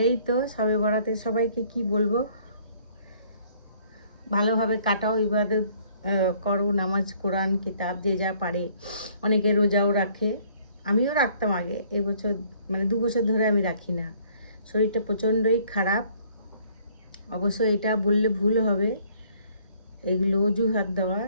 এই তো সবে বরাতে সবাইকে কি বলবো, ভালোভাবে কাটাও, ইবাদত করো, নামাজ কোরআন কিতাব যে যা পারে। অনেকে রোজাও রাখে, আমিও রাখতাম আগে, এবছর মানে 2 বছর ধরে আমি রাখি না। শরীরটা প্রচণ্ডই খারাপ। অবশ্য এটা বললে ভুল হবে, এগুলো অজুহাত দেওয়া,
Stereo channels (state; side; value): inverted; both; correlation -0.61